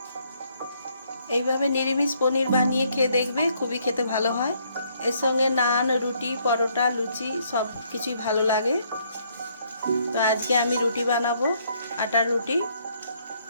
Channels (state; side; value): inverted; both; correlation -0.69